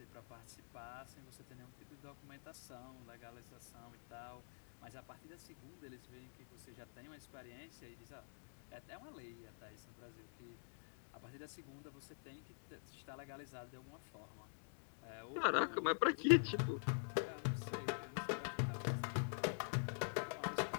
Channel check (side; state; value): right; silent; digital silence